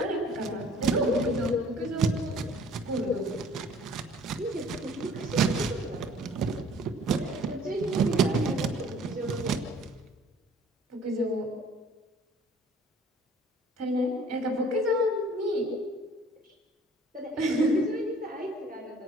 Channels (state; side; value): normal; both; correlation 0.52